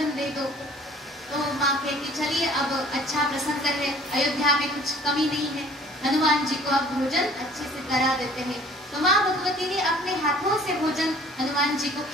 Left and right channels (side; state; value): both; normal; correlation 0.52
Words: दे दो। तो माँ कहती चलिए अब अच्छा प्रसंग है, अयोध्या में कुछ कमी नहीं है, हनुमान जी को अब भोजन अच्छे से करा देते हैं। तो माँ भगवती ने अपने हाथों से भोजन हनुमान जी को